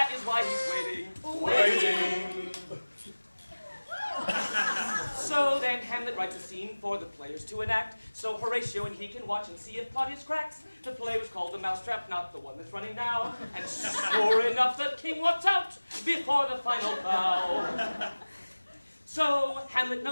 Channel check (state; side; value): inverted; both; correlation -1.00